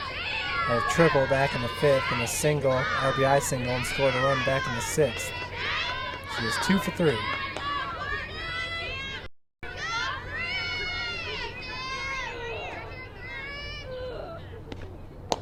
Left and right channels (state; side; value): identical; both; correlation 1.00